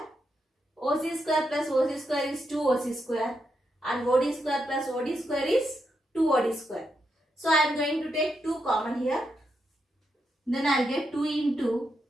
OC square plus OC square is 2OC square, and OD square plus OD square is 2OD square. So I am going to take 2 common here. Then I will get 2 into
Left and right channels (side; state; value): both; normal; correlation 0.83